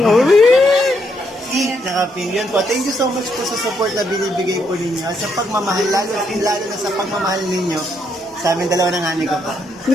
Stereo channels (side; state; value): both; normal; correlation 0.75